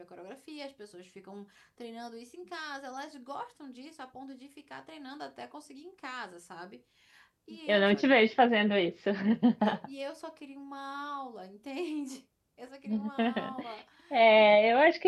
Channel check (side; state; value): both; identical; correlation 1.00